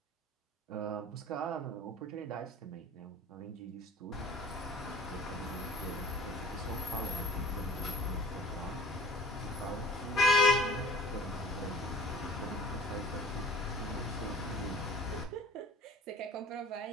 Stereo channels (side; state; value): both; normal; correlation 0.46